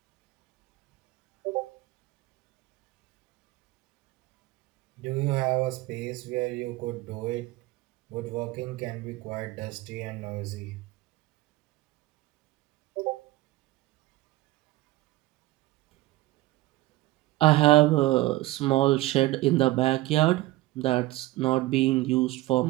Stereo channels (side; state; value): left; quieter; 18.4 dB